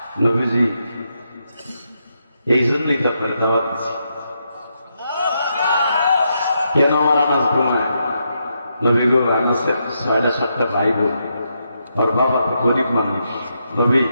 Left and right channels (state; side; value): inverted; both; correlation -0.82